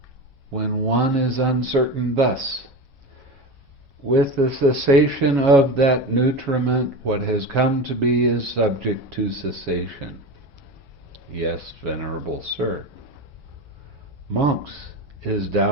when one is uncertain thus? With the cessation of that nutriment, what has come to be is subject to cessation. Yes, Venerable Sir. Monks, is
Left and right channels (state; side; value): normal; both; correlation 0.25